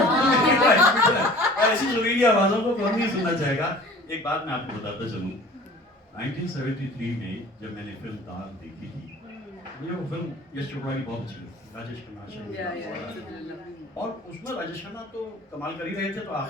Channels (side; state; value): both; normal; correlation 0.45